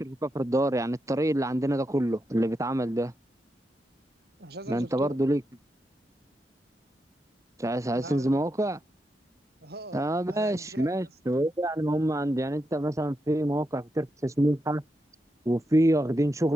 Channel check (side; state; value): both; normal; correlation 0.85